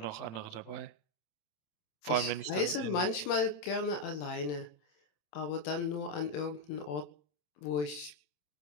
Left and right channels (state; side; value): late; right; 27 ms